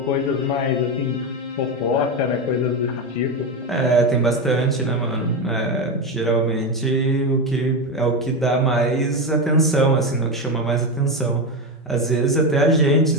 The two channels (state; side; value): normal; both; correlation 0.14